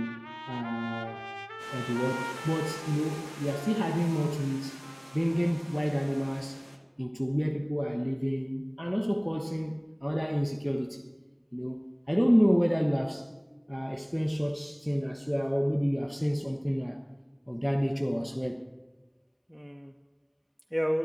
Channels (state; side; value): identical; both; correlation 1.00